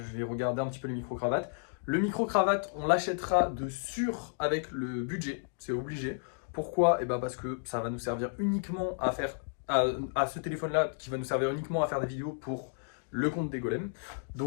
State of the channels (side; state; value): right; silent; digital silence